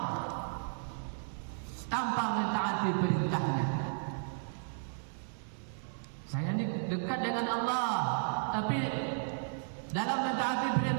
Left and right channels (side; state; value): left; silent; digital silence